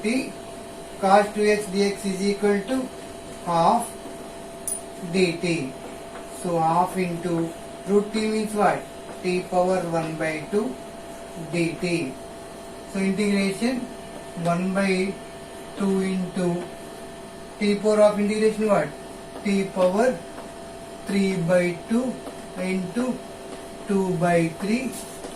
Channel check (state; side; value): identical; both; correlation 1.00